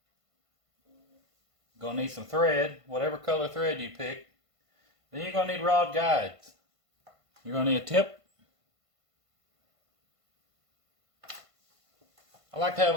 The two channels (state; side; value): late; left; 1.5 ms